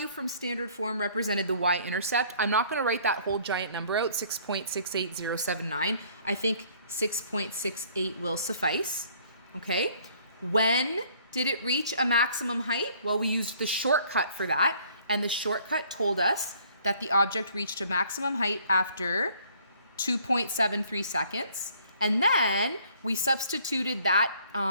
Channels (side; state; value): both; inverted; correlation -0.59